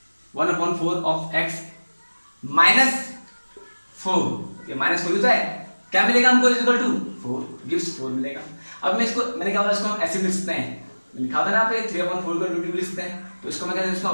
1/4 ऑफ x -4 ये -4 होता है क्या मिलेगा हमको इक्वल टू 4 गिव्स 4 मिलेगा। अब मैं इसको मैंने क्या बोला इसको हम ऐसे लिख सकते हैं लिखा था ना पे 3/4 को इंटू लिख सकते हैं तो इसको मैं कहता हूं इसको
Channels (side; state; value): both; inverted; correlation -1.00